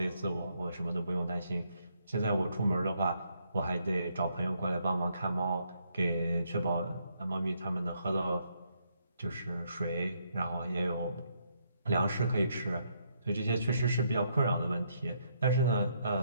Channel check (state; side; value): inverted; both; correlation -0.74